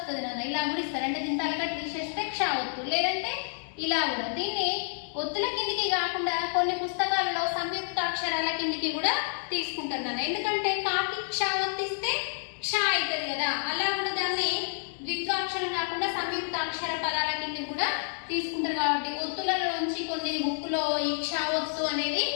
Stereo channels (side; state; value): right; silent; 59 dB below the other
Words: నాన్న, ఇలా కూడా ఇస్తారు. అంటే దీని తలకట్టు తీసేస్తే క్ష ఒత్తు, లేదంటే ఇలా కూడా. దీన్ని ఒత్తుల కిందికి కాకుండా కొన్ని పుస్తకాలలో సంయుక్త అక్షరాల కిందికి కూడా తీసుకుంటారు నాన్న. ఎందుకంటే కాకి క్ష ఒత్తిస్తే క్ష అవుతుంది కదా, అలా కూడా దాన్ని ద్విత్వాక్షరం కాకుండా సంయుక్త అక్షర పదాల కింద కూడా తీసుకుంటారు. కాబట్టి ఒత్తులలోంచి కొన్ని బుక్కులో ఈ క్ష ఒత్తు అనేది